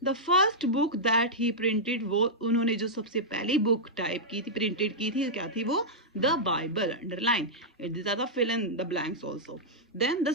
The first book that he printed, वो उन्होंने जो सबसे पहली बुक टाइप की थी, प्रिंटेड की थी, क्या थी वो, the Bible, underline it, this are the fill in the blanks also. Then the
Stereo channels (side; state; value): both; normal; correlation -0.09